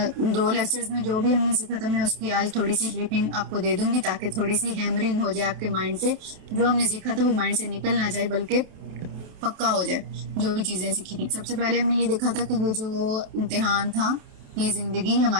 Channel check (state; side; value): late; left; 28 ms